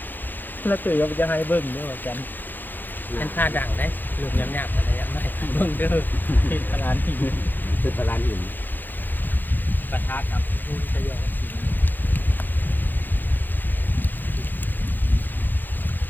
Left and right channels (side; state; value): right; late; 0.089 ms